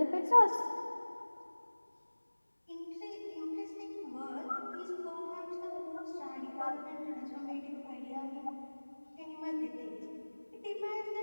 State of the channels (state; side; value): inverted; both; correlation -1.00